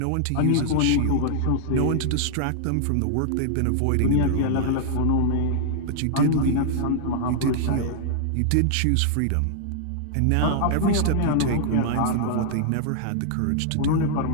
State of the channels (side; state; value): both; different; correlation -0.01